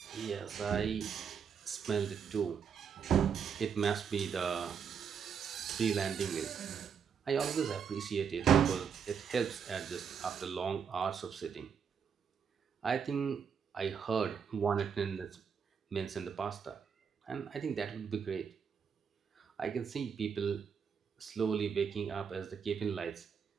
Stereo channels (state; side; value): quieter; left; 6.9 dB